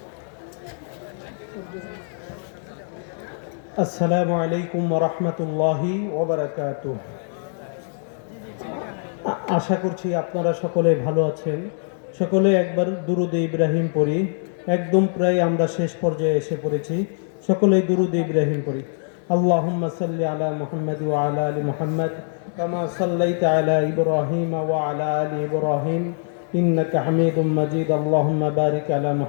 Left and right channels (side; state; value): right; silent; 62 dB below the other